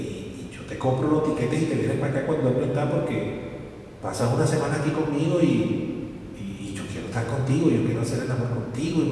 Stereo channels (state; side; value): identical; both; correlation 1.00